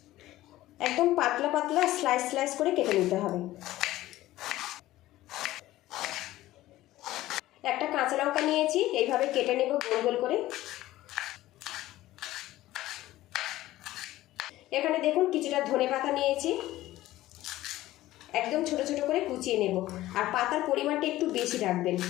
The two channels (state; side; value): quieter; right; 15.9 dB